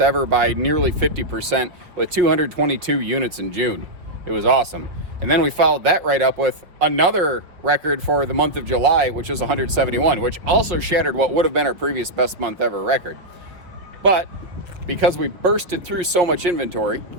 by nearly 50% with 222 units in June. It was awesome. And then we followed that right up with another record for the month of July, which is 171, which also shattered what would have been our previous best month ever record. But because we bursted through so much inventory,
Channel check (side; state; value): left; late; 5.2 ms